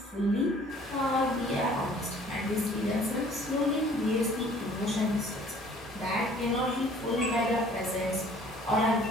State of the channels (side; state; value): both; normal; correlation 0.54